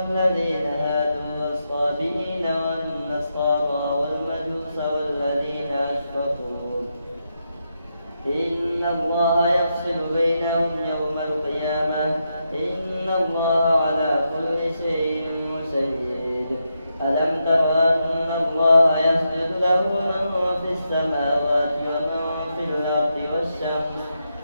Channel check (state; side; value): inverted; both; correlation -0.84